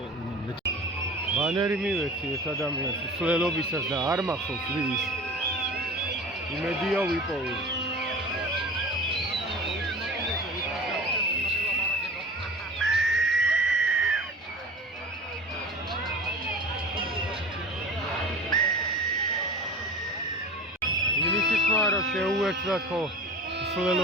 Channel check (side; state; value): both; normal; correlation 0.37